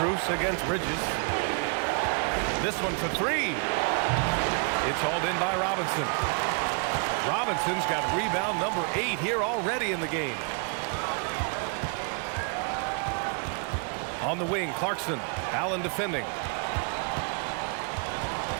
against Bridges. This one for 3. It's hauled in by Robinson. Robinson's got rebound number 8 here already in the game. On the wing, Clarkson. Allen defending.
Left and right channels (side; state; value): left; quieter; 39.4 dB